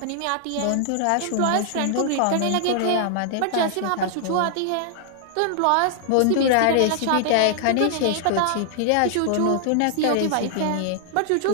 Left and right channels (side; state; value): both; different; correlation 0.00